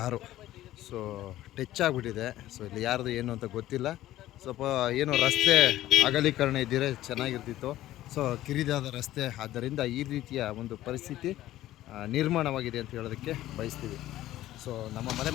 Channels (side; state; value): right; quieter; 14.5 dB